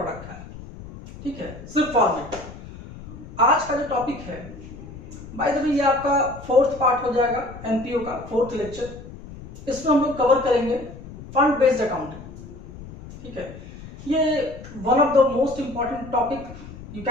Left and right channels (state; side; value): noise; left; rumble, 15 dB below the sound